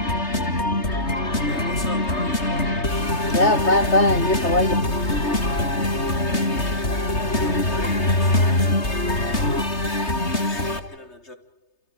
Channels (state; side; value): late; right; 3.3 ms